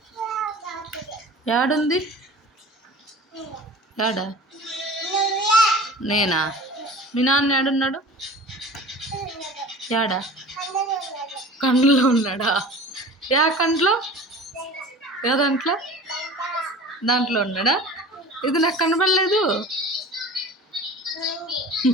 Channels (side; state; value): both; normal; correlation 0.39